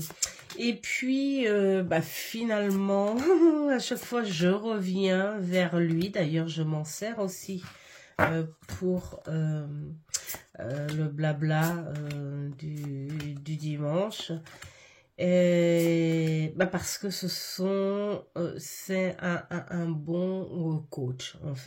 Et puis, finalement, à chaque fois, je reviens vers lui. D'ailleurs, je m'en sers aussi pour le blabla du dimanche. Et, parce que c'est un bon coach, en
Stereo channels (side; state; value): both; identical; correlation 1.00